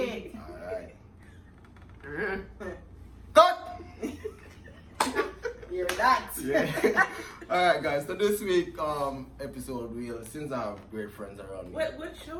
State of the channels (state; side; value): identical; both; correlation 1.00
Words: alright. Cut! You're that. Yeah. Alright guys, so this week episode since I have great friends around me. What